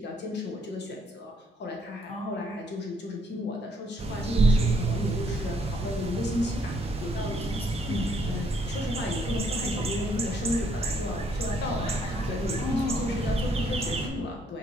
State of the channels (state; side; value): normal; both; correlation 0.69